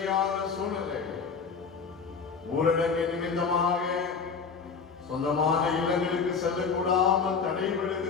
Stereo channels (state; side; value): quieter; right; 5.5 dB